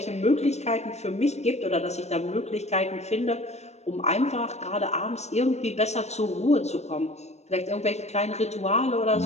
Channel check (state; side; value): late; right; 0.32 ms